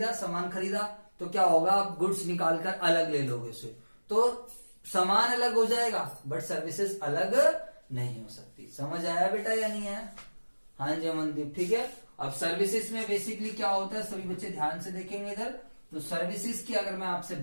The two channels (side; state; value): both; inverted; correlation -1.00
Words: तो क्या होगा? आप गुड्स निकालकर अलग ले लोगे उसे, तो सामान अलग हो जाएगा बट सर्विसेज अलग नहीं हो सकती। समझ आया बेटा या नहीं आया? हाँ जी अमनदीप, ठीक है। अब सर्विसेज में बेसिकली क्या होता है, सभी बच्चे ध्यान से देखेंगे इधर। तो सर्विसेज की अगर मैं आपसे